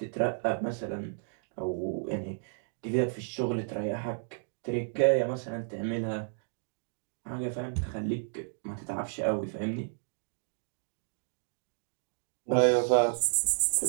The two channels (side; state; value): left; silent; digital silence